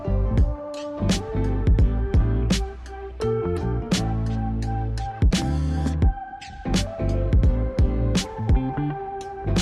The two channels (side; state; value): both; identical; correlation 1.00